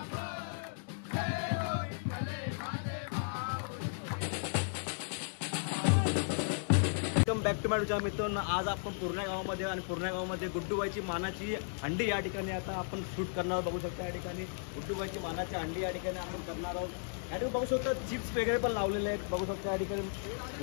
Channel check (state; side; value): silent; right; digital silence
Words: back to माय मित्रांनो, आज आपण पूर्णा गावामध्ये आणि पूर्णा गावामध्ये गुड्डूबाईची मानाची हंडी या ठिकाणी आता आपण शूट करणार आहोत. बघू शकता या ठिकाणी गुड्डूबाईची मानाची हंडी या ठिकाणी आपण करणार आहोत. या ठिकाणी बघू शकता चिप्स वगैरे पण लावलेले आहेत. बघू शकता या ठिकाणी